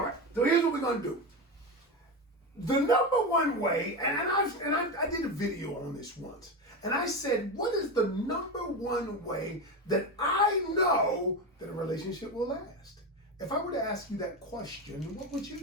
right, so here's what we're going to do. The number one way, and I did a video on this once, and I said, what is the number one way that I know that a relationship will last? If I were to ask you that question, what would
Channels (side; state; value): both; normal; correlation 0.18